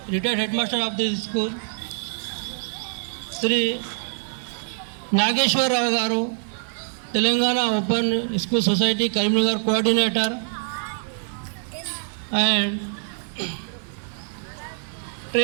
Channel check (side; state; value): left; silent; digital silence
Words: retired Headmaster of this school, Sri Nageshwar Rao Garu, Telangana Open School Society Karimnagar Coordinator, and